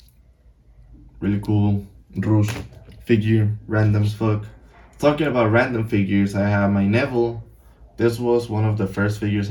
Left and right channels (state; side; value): identical; both; correlation 1.00